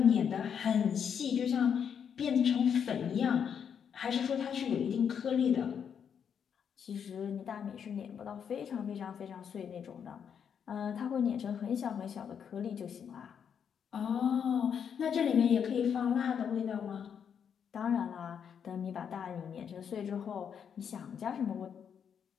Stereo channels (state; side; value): quieter; right; 7.6 dB